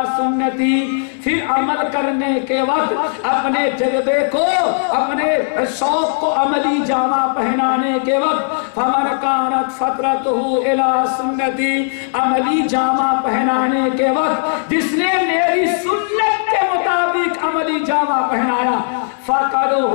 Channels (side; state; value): right; silent; digital silence